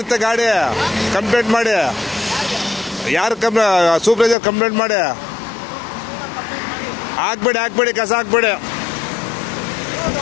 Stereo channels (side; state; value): right; drops out; at 4.4 s